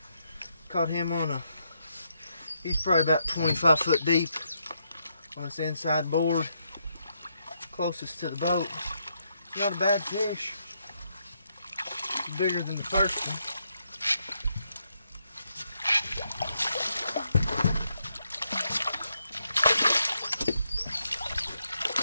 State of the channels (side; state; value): both; inverted; correlation -0.78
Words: Caught him on a, he's probably about 25 foot deep on this inside board, closest to the boat. It's not a bad fish. It's bigger than the first one.